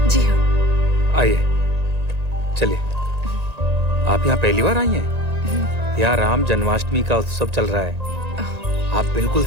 जी हाँ। आइए, चलिए। आप यहाँ पहली बार आई हैं? यहाँ राम जन्माष्टमी का उत्सव चल रहा है। आप बिल्कुल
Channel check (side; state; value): left; late; 1.9 ms